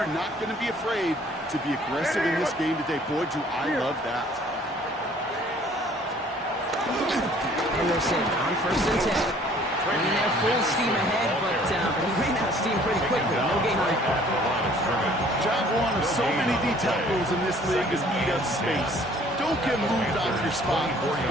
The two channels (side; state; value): both; normal; correlation 0.56